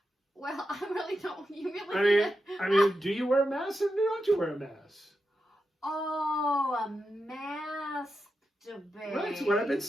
Well, I really don't. You really? I mean, do you wear a mask or don't you wear a mask? Oh, a masturbate. Right, that's what I've been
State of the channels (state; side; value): normal; both; correlation 0.88